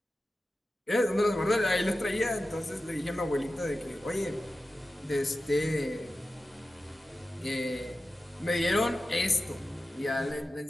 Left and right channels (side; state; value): both; normal; correlation 0.94